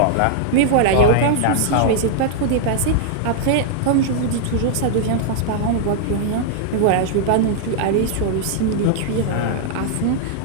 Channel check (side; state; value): both; different; correlation -0.01